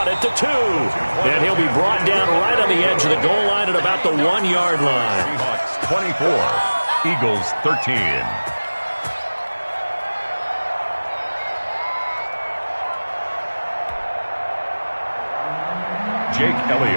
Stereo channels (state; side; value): inverted; both; correlation -1.00